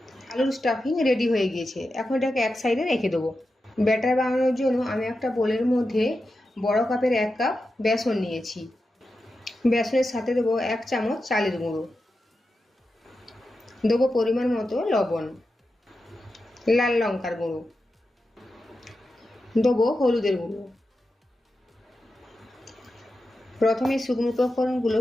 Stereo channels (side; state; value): both; normal; correlation 0.90